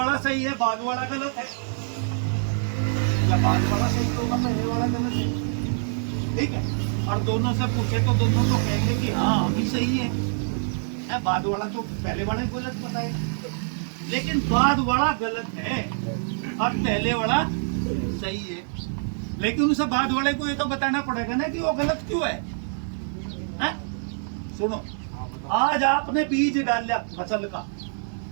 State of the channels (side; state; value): left; silent; digital silence